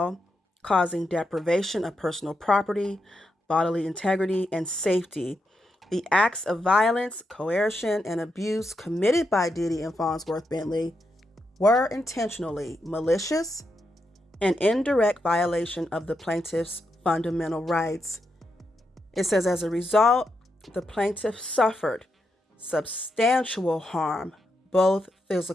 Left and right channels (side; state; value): both; normal; correlation 0.84